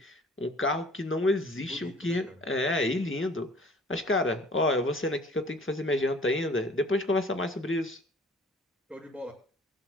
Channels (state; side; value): normal; both; correlation 0.51